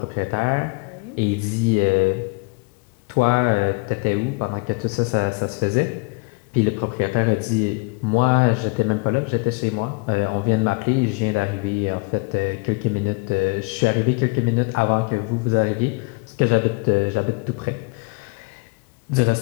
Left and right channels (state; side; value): quieter; right; 28.5 dB